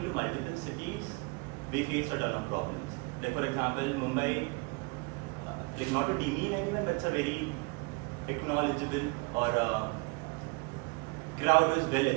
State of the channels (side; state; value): left; quieter; 28.7 dB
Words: into multiple cities, we faced a ton of problems. Like for example, Mumbai, like not to demean anyone, but it's a very acknowledgeable or crowd who is well